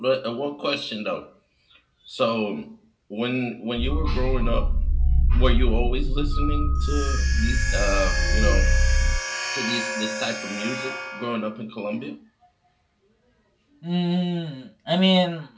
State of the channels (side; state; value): both; identical; correlation 1.00